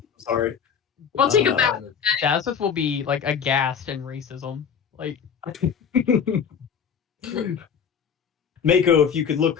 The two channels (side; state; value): right; quieter; 7.2 dB